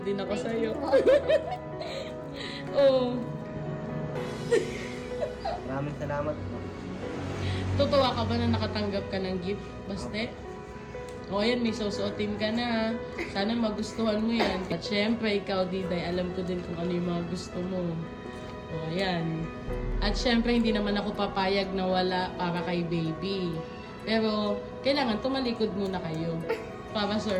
din ako sa'yo. Oh. Maraming salamat po. Tutuwa ka ba na nakatanggap ka ng gift? Baste? O ayan, may susuotin ka na. Sana magustuhan mo yan. At syempre, ikaw, Diday, alam ko din kung ano yung mga gusto mo. O ayan. At syempre, hindi naman ako papayag na wala para kay baby. Pero, kailangan tumalikod muna kayo. Para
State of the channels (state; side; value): identical; both; correlation 1.00